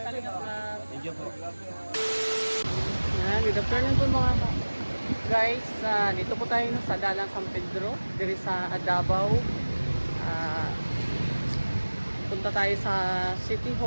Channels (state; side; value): inverted; both; correlation -1.00